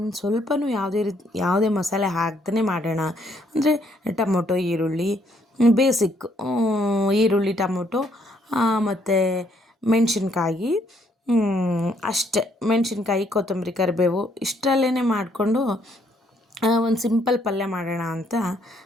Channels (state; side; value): normal; both; correlation 0.69